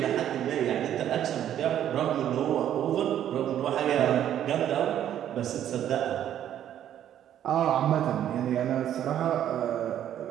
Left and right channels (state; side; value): quieter; left; 10.8 dB